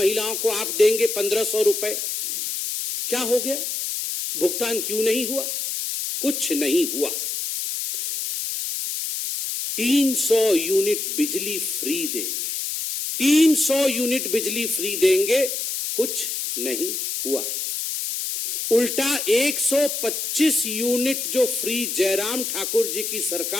को आप देंगे 1,500 रुपए। क्या हो गया? भुगतान क्यों नहीं हुआ? कुछ नहीं हुआ। 300 यूनिट बिजली फ्री देंगे, 300 यूनिट बिजली फ्री देंगे, कुछ नहीं हुआ। उल्टा 125 यूनिट जो फ्री जयराम ठाकुर जी की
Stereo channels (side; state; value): left; noise; hiss, 3 dB below the sound